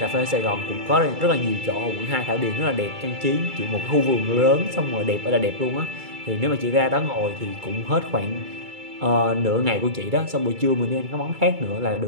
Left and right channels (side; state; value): left; late; 2.3 ms